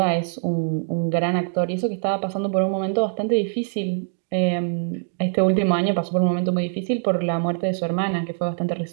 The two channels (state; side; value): silent; left; digital silence